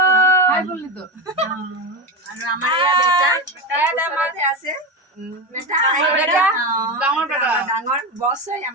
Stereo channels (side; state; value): left; late; 1.2 ms